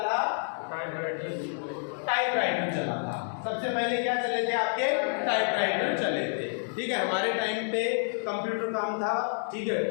था, टाइपराइटर चला था। सबसे पहले क्या चले थे आपके, टाइपराइटर चले थे, ठीक है। हमारे टाइम पे कंप्यूटर काम था, ठीक है,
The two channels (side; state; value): right; silent; 59 dB below the other